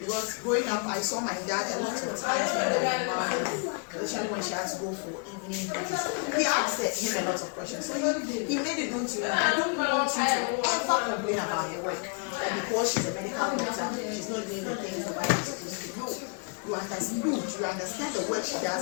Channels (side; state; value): right; quieter; 36.3 dB